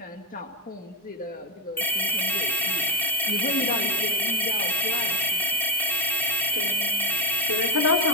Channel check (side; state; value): both; normal; correlation 0.05